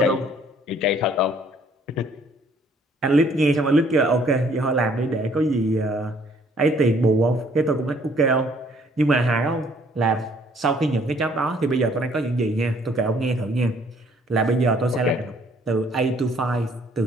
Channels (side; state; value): both; normal; correlation 0.61